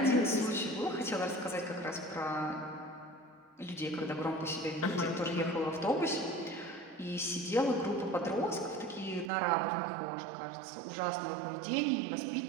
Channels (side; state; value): left; drops out; at 9.3 s